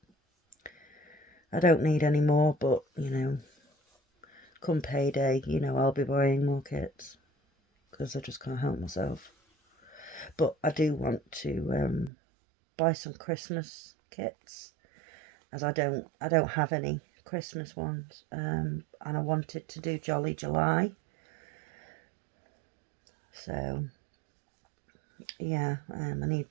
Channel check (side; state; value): left; drops out; at 12.1 s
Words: I don't need any more, but, you know, come payday, you know, I'll be buying more kits because I just can't help myself. But I do want to buy some Christmas kits, as I don't have any Christmas ones, and I wanted to do Jolly July. So yeah, I need